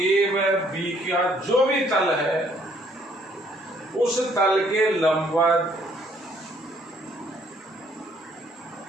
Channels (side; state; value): both; normal; correlation 0.64